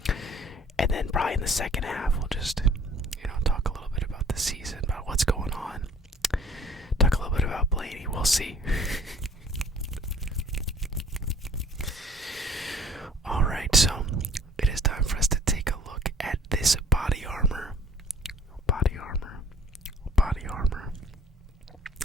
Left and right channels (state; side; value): normal; both; correlation 0.53